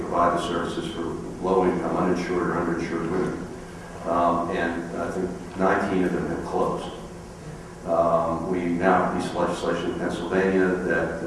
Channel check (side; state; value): both; identical; correlation 1.00